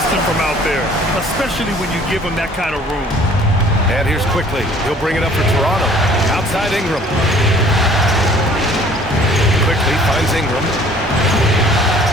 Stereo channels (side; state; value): both; normal; correlation 0.54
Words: from out there, especially when you give him that kind of room. And here's Quickly. He'll bring it up for Toronto. Outside Ingram. Quickly finds Ingram.